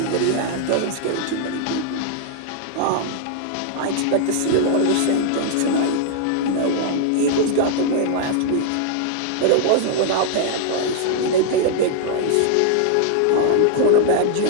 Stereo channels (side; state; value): both; different; correlation 0.00